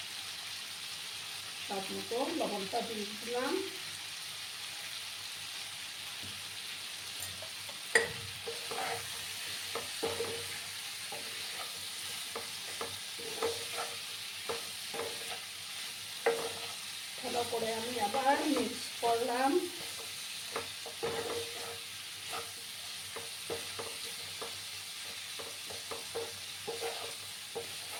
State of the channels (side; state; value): both; identical; correlation 1.00